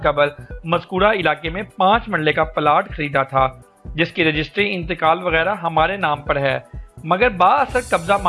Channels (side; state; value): both; identical; correlation 1.00